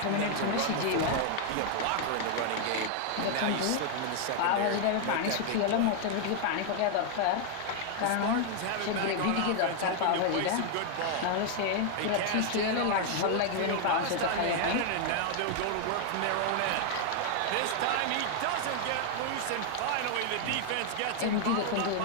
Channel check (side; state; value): both; different; correlation 0.00